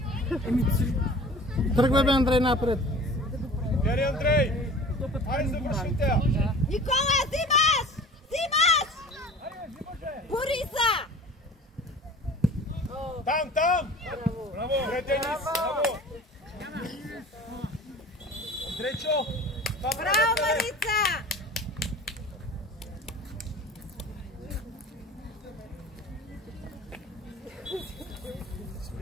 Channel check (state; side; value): normal; both; correlation 0.43